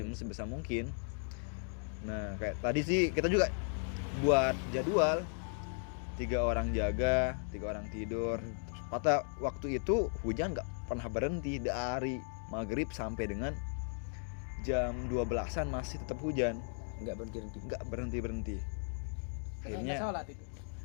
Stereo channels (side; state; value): right; silent; 54 dB below the other